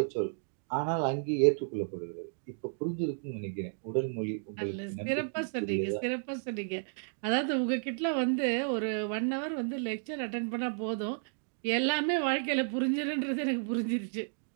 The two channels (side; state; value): left; silent; digital silence